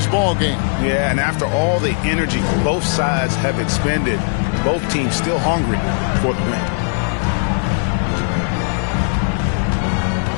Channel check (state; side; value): silent; right; 58 dB below the other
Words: ball game. Yeah, and after all the energy both sides have expended, both teams still hungry for the win.